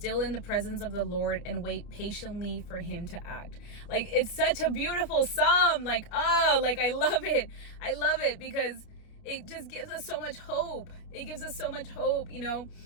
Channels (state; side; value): late; right; 29 ms